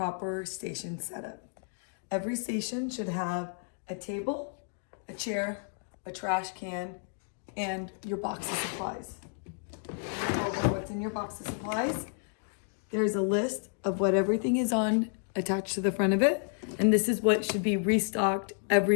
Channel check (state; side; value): silent; right; 57 dB below the other